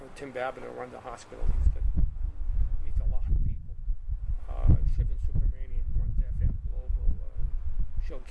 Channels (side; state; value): both; identical; correlation 1.00